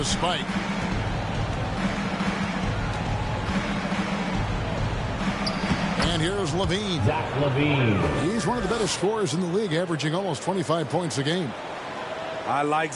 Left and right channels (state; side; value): identical; both; correlation 1.00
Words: spike. And here's Levine. Zach Levine. He's one of the better scorers in the league, averaging almost 25 points a game. I like